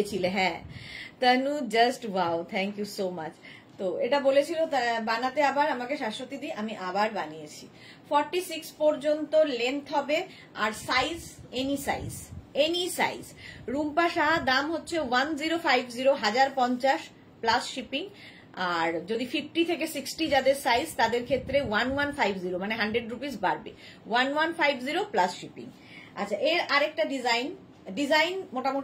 হ্যাঁ। Tanu just wow, thank you so much. তো এটা বলেছিল বানাতে আবার আমাকে শাশ্বতী দি, আমি আবার বানিয়েছি। 46 পর্যন্ত লেন্থ হবে, আর size any size, any size. Rumpa Shah, দাম হচ্ছে 1050, 1050 প্লাস শিপিং। আর যদি 50 থেকে 60 যাদের সাইজ, তাদের ক্ষেত্রে 1150, মানে 100 রুপিস বাড়বে। 1150 প্লাস শিপিং। আচ্ছা, এর আরেকটা ডিজাইন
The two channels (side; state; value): both; identical; correlation 1.00